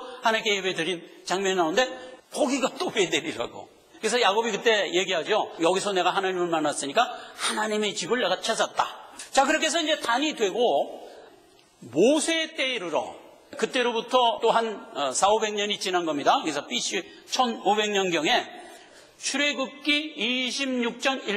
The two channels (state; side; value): identical; both; correlation 1.00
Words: 하나님께 예배 드린 장면이 나오는데 거기가 또 베델이라고. 그래서 야곱이 그때 얘기하죠. 여기서 내가 하나님을 만났으니까 하나님의 집을 내가 찾았다. 자, 그렇게 해서 이제 단이 되고 모세 때에 이르러 그때로부터 또 한 400-500년이 지난 겁니다. 그래서 BC 1500년경에 출애굽기 26장